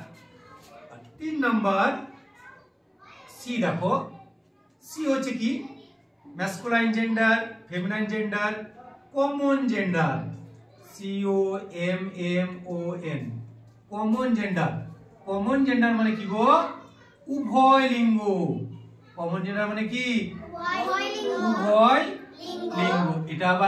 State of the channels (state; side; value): identical; both; correlation 1.00